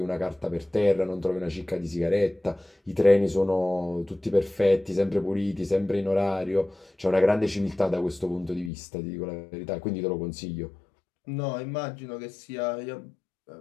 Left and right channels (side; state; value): right; drops out; at 8.7 s